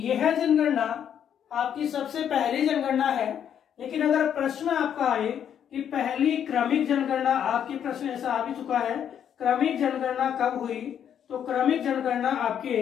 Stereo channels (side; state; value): right; quieter; 9.0 dB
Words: जनगणना आपकी सबसे पहली जनगणना है। लेकिन अगर प्रश्न आपका आए कि पहली क्रमिक जनगणना, आपकी प्रश्न ऐसा आ भी चुका है, क्रमिक जनगणना कब हुई, तो क्रमिक जनगणना आपके